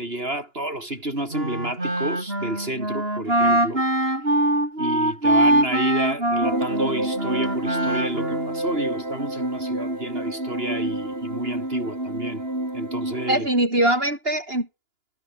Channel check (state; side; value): late; left; 2.9 ms